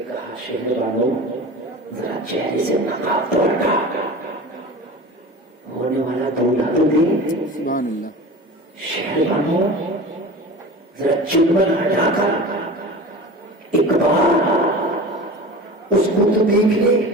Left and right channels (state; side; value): normal; both; correlation 0.35